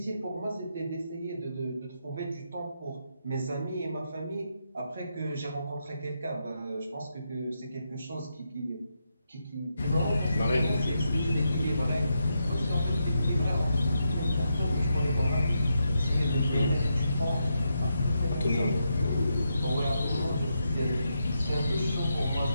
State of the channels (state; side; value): inverted; both; correlation -0.83